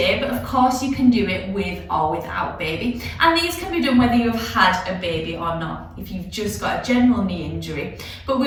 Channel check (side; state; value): both; identical; correlation 1.00